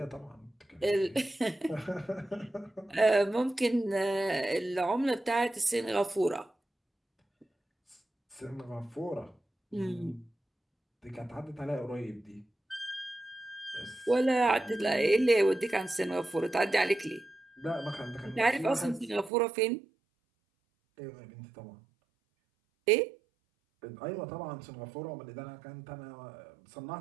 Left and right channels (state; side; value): drops out; left; at 19.3 s